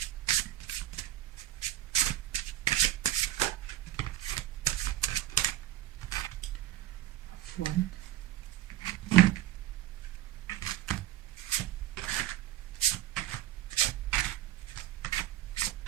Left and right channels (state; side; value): quieter; left; 13.8 dB